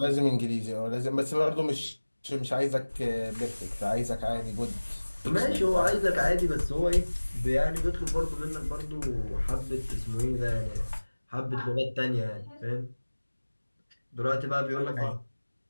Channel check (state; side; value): inverted; both; correlation -1.00